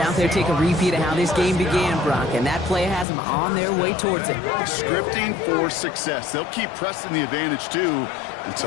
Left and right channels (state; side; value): drops out; right; at 3.1 s